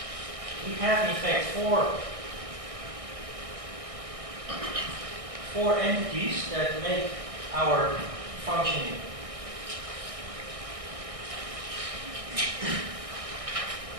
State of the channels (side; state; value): left; late; 1.6 ms